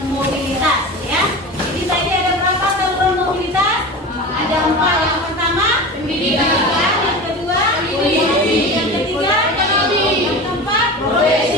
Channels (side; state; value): both; normal; correlation 0.30